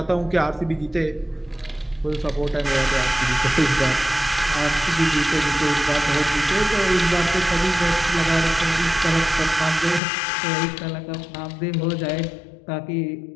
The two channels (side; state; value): right; drops out; at 10.0 s